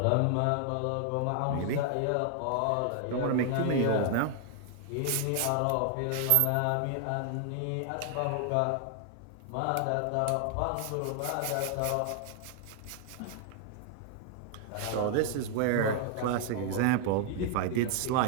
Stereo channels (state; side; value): different; both; correlation 0.00